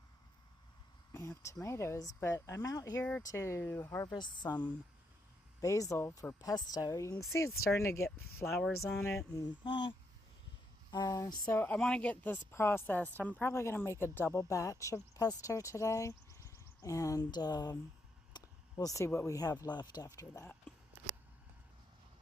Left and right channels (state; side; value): normal; both; correlation 0.79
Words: we have tomatoes, but I'm out here to harvest some basil for pesto. You can see it's starting to get flowers on it, and so I want to get this processed. I'm probably going to make a double batch of pesto today, and we'll see what we have left after that.